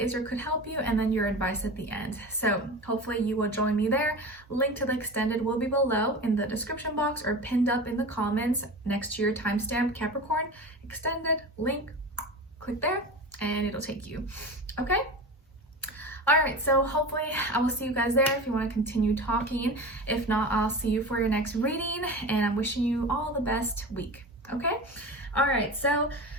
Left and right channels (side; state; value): both; normal; correlation 0.30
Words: or could help you, and then your advice at the end. So hopefully you will join me there. Link to the extended will be below in the description box or pinned up in the comments next to your timestamp, Capricorn.Extended link. Click there and it'll take you. Okay? All right, so hopefully I will see you guys there if you want to continue talking. If not, I'll see you for your next reading, and I'm wishing you all the best week, okay? All right, so